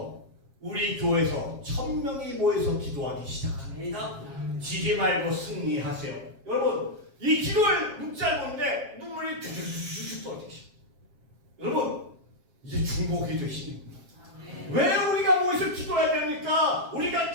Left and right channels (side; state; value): left; late; 7.4 ms